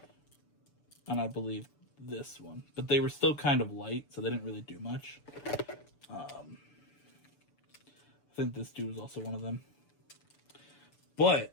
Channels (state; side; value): late; right; 6.9 ms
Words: And I believe this one. But they were still kind of light, so they didn't really do much. I think this dude was also one of them.